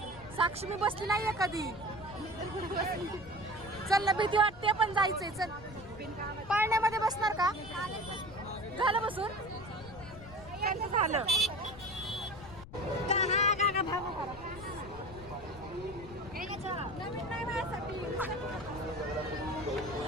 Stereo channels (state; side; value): noise; left; rumble, 17 dB below the sound